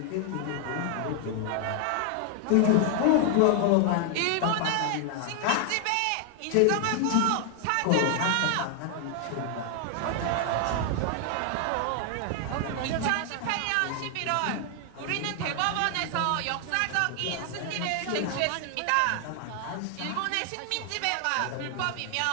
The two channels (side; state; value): both; different; correlation 0.00